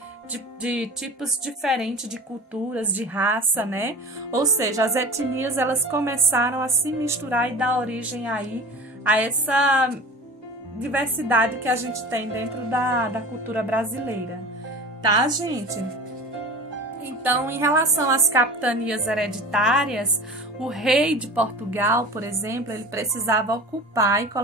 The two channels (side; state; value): both; normal; correlation 0.36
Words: de tipos diferentes de culturas, de raça, né? Ou seja, as etnias, elas começaram a se misturar e dar origem aí a essa diversidade que a gente tem dentro da cultura brasileira, tá, gente? Então, em relação às capitanias hereditárias, o rei de Portugal, por exemplo, ele precisava ocupar e